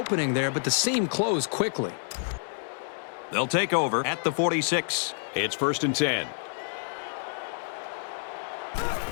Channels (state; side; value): silent; right; digital silence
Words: there, but the seam closed quickly. They'll take over at the 46. It's 1st and 10.